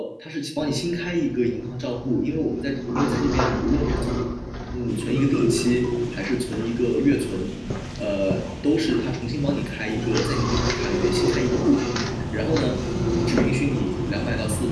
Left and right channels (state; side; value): identical; both; correlation 1.00